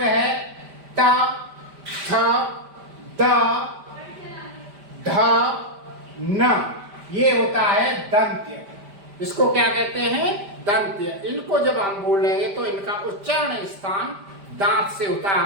है ट, थ, द, ध, न, ये होता है दंत्य। इसको क्या कहते हैं? दंत्य। इनको जब हम बोलेंगे तो इनका उच्चारण स्थान दांत से होता है।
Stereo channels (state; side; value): late; left; 5.0 ms